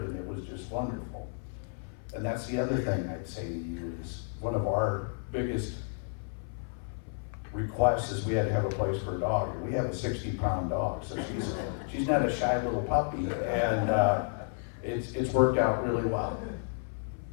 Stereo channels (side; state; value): right; silent; 57 dB below the other